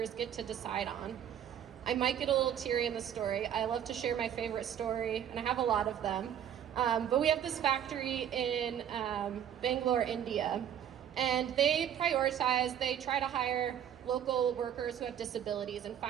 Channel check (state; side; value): quieter; left; 9.6 dB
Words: get to decide on. I might get a little teary in the story. I love to share my favorite story, and I have a lot of them. But we have this factory in Bangalore, India, and they try to hire local workers who have disabilities and